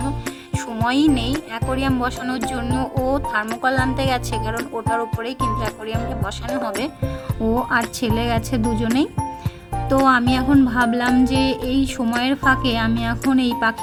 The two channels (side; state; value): both; identical; correlation 1.00